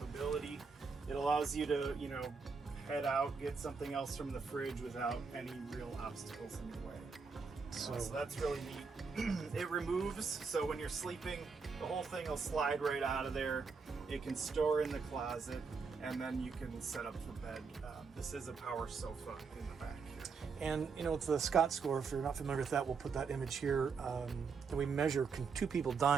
It allows you to, head out, get something else from the fridge without any real obstacles in your way. So that's really neat. It removes, so when you're sleeping, the whole thing will slide right out of there. It can store in the closet, and then you can set up for bed. This is a power sofa in the back here. And it's the Scott score. If you're not familiar with that, we'll put that image here. And we measure two people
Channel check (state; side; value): quieter; left; 5.1 dB